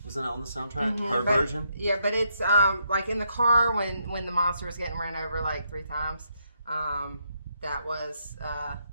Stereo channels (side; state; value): both; inverted; correlation -0.77